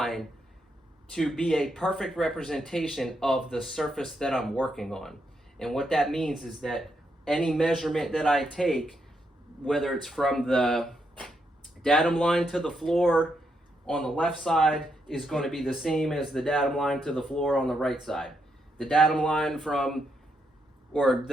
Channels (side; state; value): both; normal; correlation 0.80